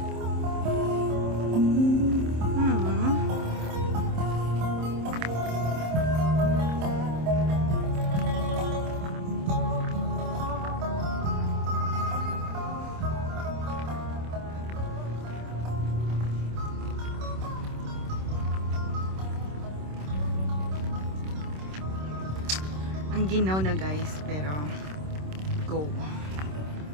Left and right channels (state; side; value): late; left; 26 ms